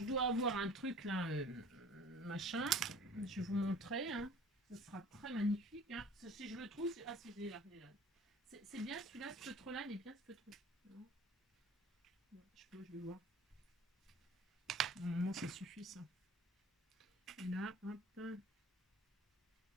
dois avoir un truc là, machin. Je vais vous montrer. Hein. Ce sera très magnifique. Hein. Si je le trouve, c'est... Ah, c'est là. C'est bien celui-là, ce feutre-là, il est bien ce feutre. Je vais voir. Normalement, ça suffit, ça. Et là, hop.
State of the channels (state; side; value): normal; both; correlation 0.47